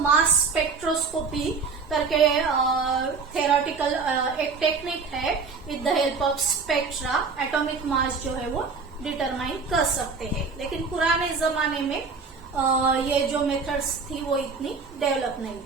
मास स्पेक्ट्रोस्कोपी करके थेरोटिकल एक टेक्निक है, with the help of spectra atomic mass जो है वो डिटरमाइन कर सकते हैं। लेकिन पुराने जमाने में ये जो मेथड्स थी वो इतनी डेवलप नहीं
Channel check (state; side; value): quieter; left; 4.8 dB